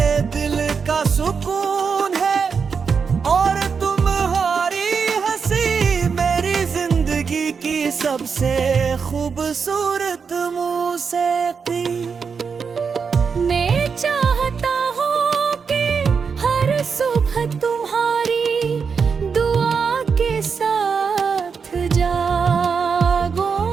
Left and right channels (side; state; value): left; quieter; 5.8 dB